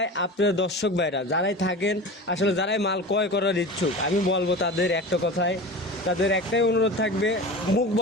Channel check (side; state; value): both; normal; correlation 0.32